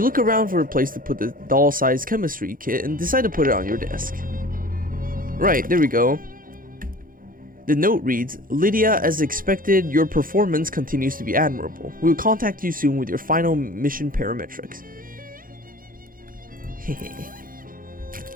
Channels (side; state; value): left; late; 0.41 ms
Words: look around for a place to put the doll-sized chemistry kit and decide to put it on your desk. Right, there we go. The note reads, Lydia, as expected, your performance continues to be admirable. We will contact you soon with your final mission parametrics.